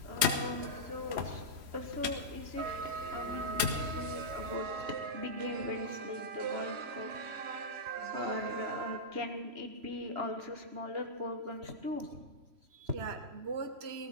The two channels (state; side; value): late; left; 3.0 ms